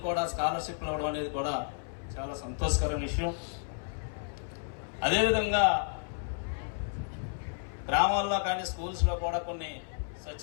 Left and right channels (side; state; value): right; silent; 56 dB below the other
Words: కూడా స్కాలర్షిప్లు ఇవ్వడం అనేది కూడా చాలా సంతోషకరమైన విషయం. అదేవిధంగా గ్రామాల్లో కానీ, స్కూల్స్లో కూడా కొన్ని